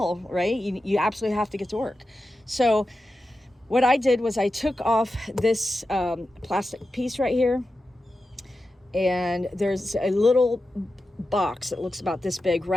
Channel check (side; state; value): both; normal; correlation 0.91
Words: right? You absolutely have to get to work. So what I did was I took off this plastic piece right here, and there's a little box that looks about this big